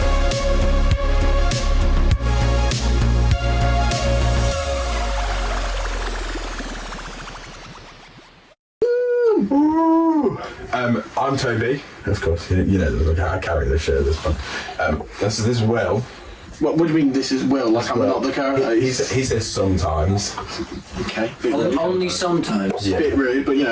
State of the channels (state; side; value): identical; both; correlation 1.00